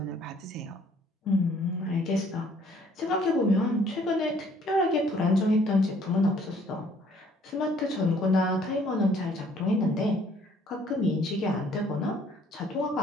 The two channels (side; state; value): both; normal; correlation 0.60